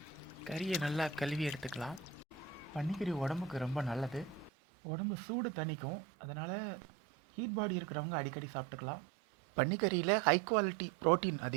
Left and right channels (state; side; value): drops out; left; at 4.5 s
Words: கறியை நல்லா கழுவி எடுத்துக்கலாம். பன்னிக்கறி உடம்புக்கு ரொம்ப நல்லது. உடம்பு சூடு தணிக்கும். அதனால் ஹீட் பாடி இருக்கிறவங்க அடிக்கடி சாப்பிட்டுக்கலாம். பன்னிக்கறியில் ஹை குவாலிட்டி ப்ரோட்டீன்